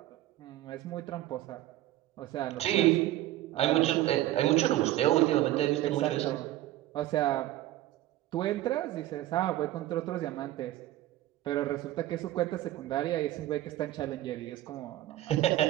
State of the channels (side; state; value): left; quieter; 14.9 dB